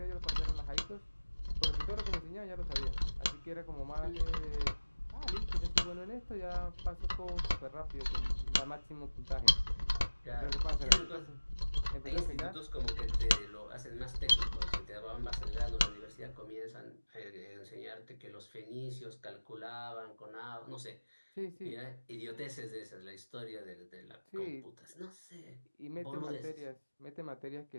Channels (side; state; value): both; inverted; correlation -1.00